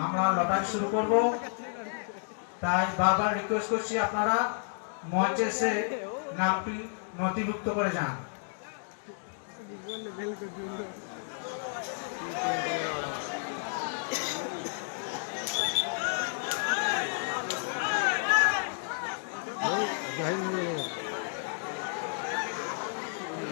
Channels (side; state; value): right; silent; digital silence